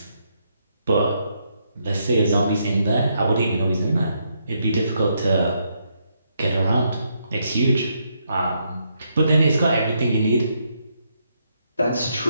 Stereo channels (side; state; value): both; inverted; correlation -0.77